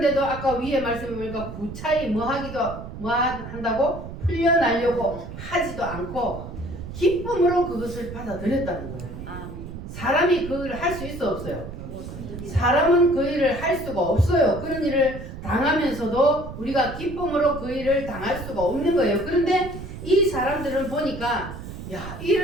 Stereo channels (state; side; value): noise; right; rumble, 10 dB below the sound